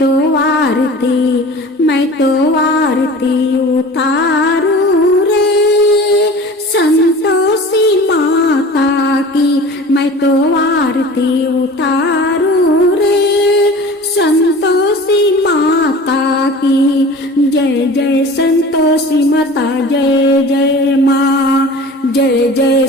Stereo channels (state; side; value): normal; both; correlation 0.40